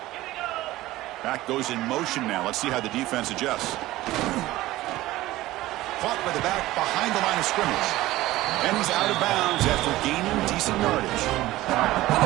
Back goes in motion now. Let's see how the defense adjusts. Caught by the back behind the line of scrimmage. And he's out of bounds after gaining decent yardage. Well,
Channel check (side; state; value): left; quieter; 16.9 dB